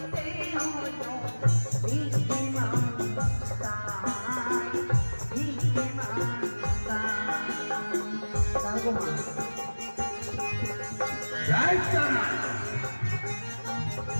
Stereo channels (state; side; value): inverted; both; correlation -1.00